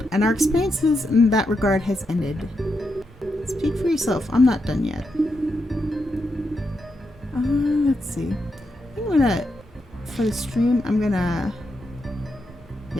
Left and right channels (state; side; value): normal; both; correlation 0.84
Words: and our experiences in that regard has ended. Speak for yourself. I'm not done yet. Let's see. I'm gonna, for the stream, I'm gonna,